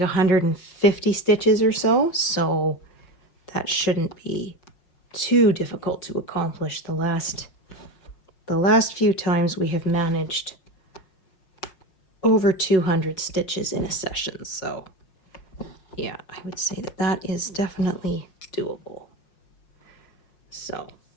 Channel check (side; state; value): right; late; 5.5 ms